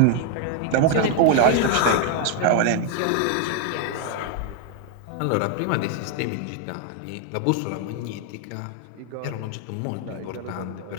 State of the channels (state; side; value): different; both; correlation 0.00